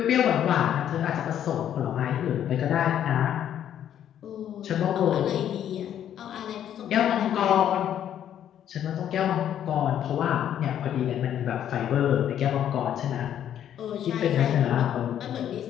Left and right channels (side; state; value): right; quieter; 10.3 dB